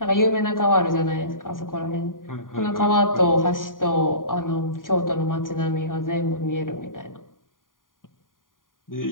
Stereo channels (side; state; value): right; late; 0.89 ms